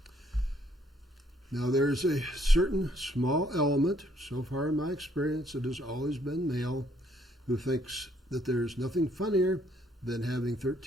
Now, there's a certain small element, so far in my experience, it has always been male, who thinks that there's nothing funnier than having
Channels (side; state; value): both; normal; correlation 0.67